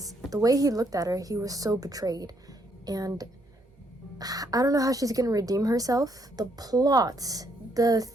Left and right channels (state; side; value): normal; both; correlation 0.72